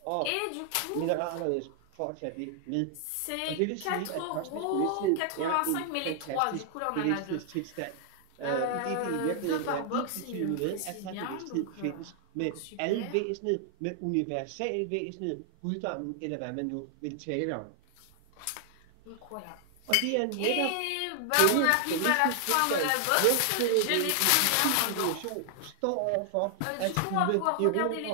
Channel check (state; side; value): different; both; correlation 0.00